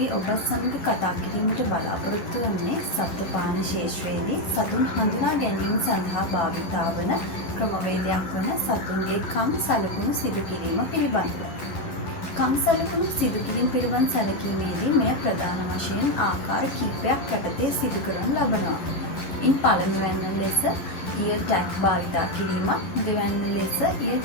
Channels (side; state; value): right; late; 11 ms